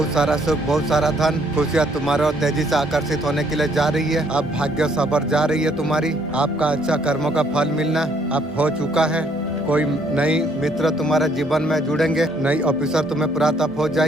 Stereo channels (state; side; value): normal; both; correlation 0.67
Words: सारा सुख, बहुत सारा धन, खुशियाँ तुम्हारे और तेजी से आकर्षित होने के लिए जा रही है। अब भाग्य सबर जा रही है तुम्हारी। आपका अच्छा कर्मों का फल मिलना अब हो चुका है। कोई नई मित्र तुम्हारे जीवन में जुड़ेंगे। नई ऑफिसर तुम्हें प्राप्त हो